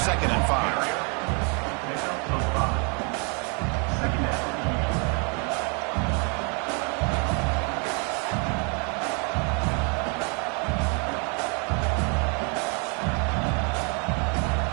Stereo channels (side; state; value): left; quieter; 36.1 dB